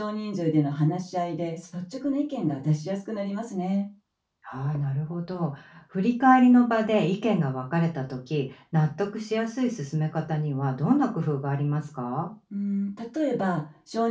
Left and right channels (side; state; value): both; identical; correlation 1.00